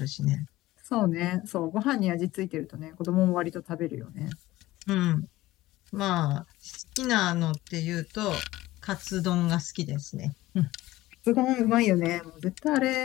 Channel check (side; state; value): right; quieter; 17.1 dB